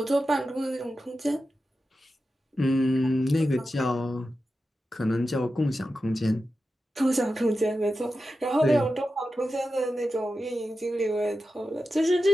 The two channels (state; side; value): normal; both; correlation 0.91